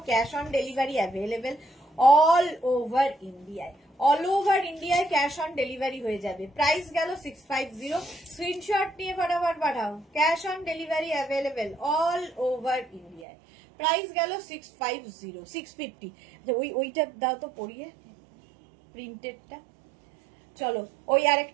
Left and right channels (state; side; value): drops out; left; at 13.2 s